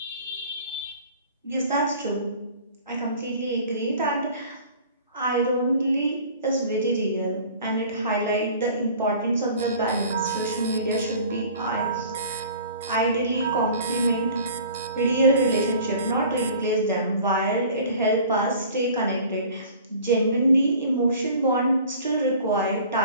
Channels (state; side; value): inverted; both; correlation -0.46